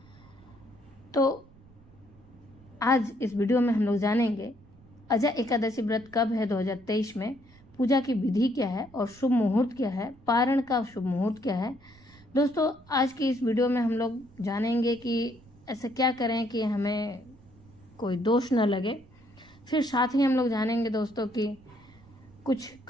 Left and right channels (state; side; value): noise; right; rumble, 25 dB below the sound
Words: तो आज इस वीडियो में हम लोग जानेंगे अजय एकादशी व्रत कब है 2023 में, पूजा की विधि क्या है और शुभ मुहूर्त क्या है, पारण का शुभ मुहूर्त क्या है। दोस्तों, आज की इस वीडियो में हम लोग जानेंगे कि ऐसा क्या करें कि हमें कोई दोष न लगे। फिर साथ ही हम लोग जानेंगे दोस्तों कि कुछ